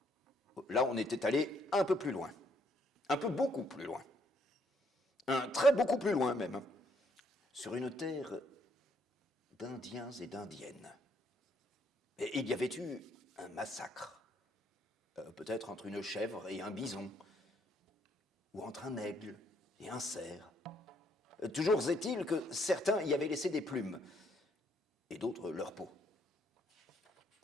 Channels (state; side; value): normal; both; correlation 0.70